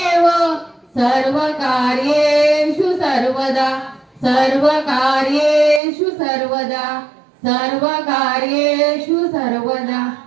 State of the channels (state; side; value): drops out; left; at 5.8 s